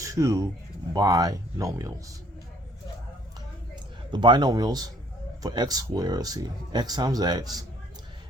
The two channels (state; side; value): normal; both; correlation 0.60